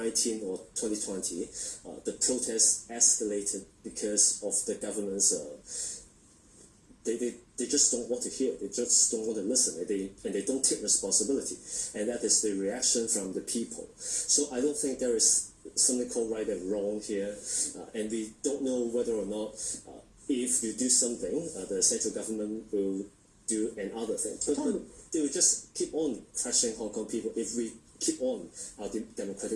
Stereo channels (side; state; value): both; identical; correlation 1.00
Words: or 2020, the protests escalated because of the government's. They just don't want to hear. They just don't want to listen. And they don't take responsibility. And that is the reaction from the people. So I don't think there is something called right and wrong here. And we don't know whether or not if you do something, the central government will do another thing. But they will just keep on crushing Hong Kong people if we keep on our